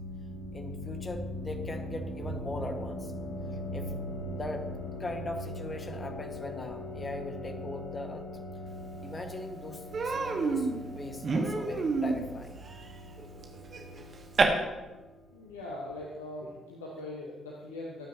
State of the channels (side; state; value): both; normal; correlation 0.70